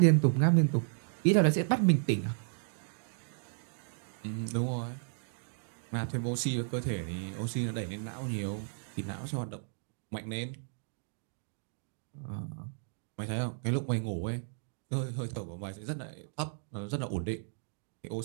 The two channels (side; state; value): left; silent; digital silence